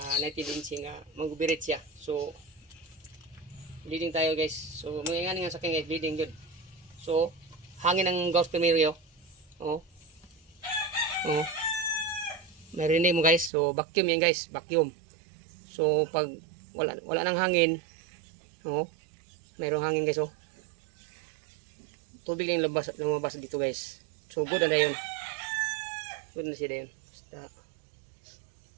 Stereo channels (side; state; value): left; drops out; at 13.5 s